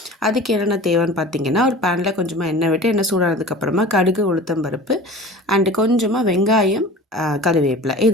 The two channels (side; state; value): both; normal; correlation 0.39